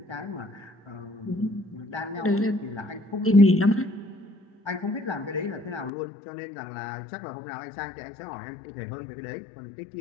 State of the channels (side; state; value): right; drops out; at 5.9 s